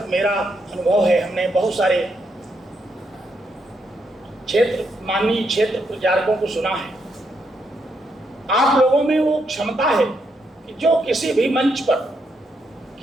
मेरा अनुभव है, हमने बहुत सारे माननीय क्षेत्र प्रचारकों को सुना है। आप लोगों में वो क्षमता है कि जो किसी भी मंच पर,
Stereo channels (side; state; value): both; normal; correlation 0.78